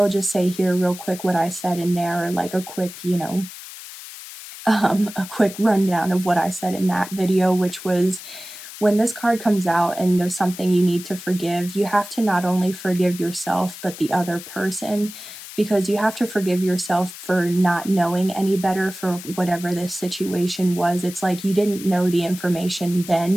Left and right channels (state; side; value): noise; left; hiss, 14 dB below the sound